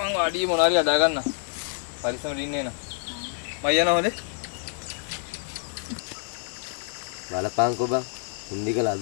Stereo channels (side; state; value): right; silent; 60 dB below the other